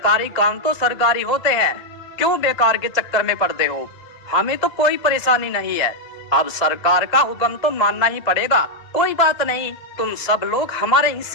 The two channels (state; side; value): late; right; 1.8 ms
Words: काम तो सरकारी होते हैं, क्यों बेकार के चक्कर में पड़ते हो? हमें तो कोई परेशानी नहीं है। अब सरकार का हुक्म तो मानना ही पड़ेगा। कोई बात नहीं, तुम सब लोग हमारे